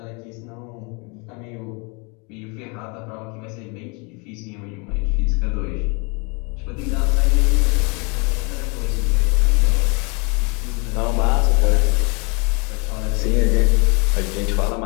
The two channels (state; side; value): quieter; right; 31.3 dB